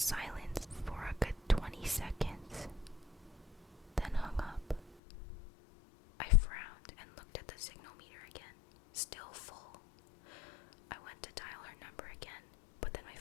for a good 20 seconds, then hung up. I frowned and looked at the signal meter again, still full. I went to dial her number again, but then my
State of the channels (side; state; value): right; drops out; at 5.0 s